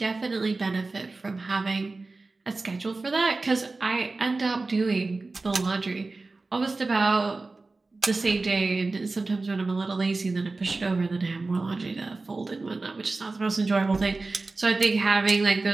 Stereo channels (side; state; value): left; quieter; 3.5 dB